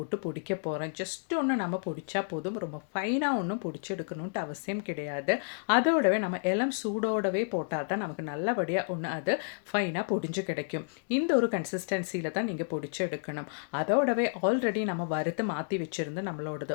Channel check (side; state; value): right; silent; digital silence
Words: பொடிக்க போகிறேன். ஜஸ்ட் ஒன்று நம்ம பொடிச்சா போதும். ரொம்ப ஃபைனாக ஒன்றும் பொடிச்சு எடுக்கணுன்ட்டு அவசியம் கிடையாது. அதோடவே நம்ம இளம் சூடோடவே போட்டால் தான் நமக்கு நல்லபடியாக ஒன்று அது ஃபைனாக பொடிஞ்சு கிடைக்கும். இந்த ஒரு கன்சிஸ்டன்சியில் தான் நீங்கள் பொடிச்சு எடுக்கணும். அதோடவே ஆல்ரெடி நம்ம வறுத்து மாற்றி வச்சுருந்து